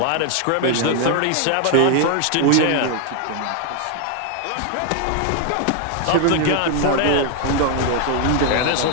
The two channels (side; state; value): both; different; correlation 0.00